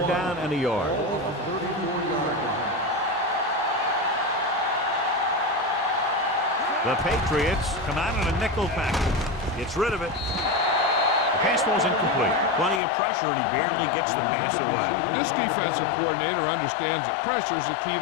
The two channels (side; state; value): right; drops out; at 12.8 s